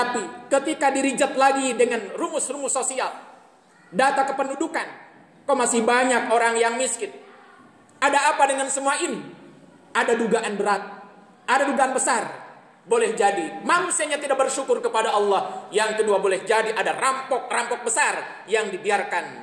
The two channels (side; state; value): both; identical; correlation 1.00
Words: ketika dirijat lagi dengan rumus-rumus sosial, data kependudukan, kok masih banyak orang yang miskin. Ada apa dengan semua ini? Ada dugaan berat, ada dugaan besar. Boleh jadi manusianya tidak bersyukur kepada Allah. Yang kedua, boleh jadi ada rampok-rampok besar yang